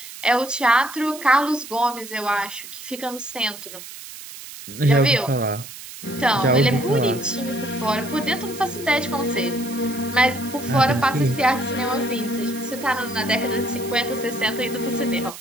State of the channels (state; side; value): noise; right; hiss, 13 dB below the sound